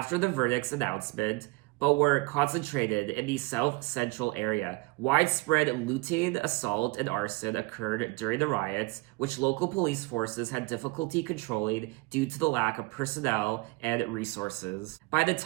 the verdict's announcement, but were concentrated in the South Central area. Widespread looting, assault, and arson occurred during the riots, which local police forces had difficulty controlling due to the lack of personnel and resources. By the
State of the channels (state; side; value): quieter; left; 24.5 dB